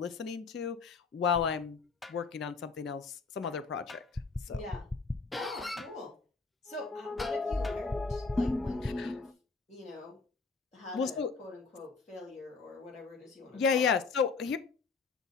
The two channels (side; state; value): right; quieter; 4.5 dB